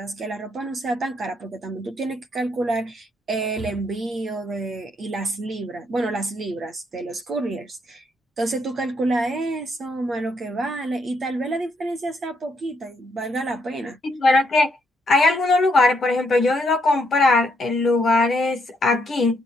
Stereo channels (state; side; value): normal; both; correlation 0.74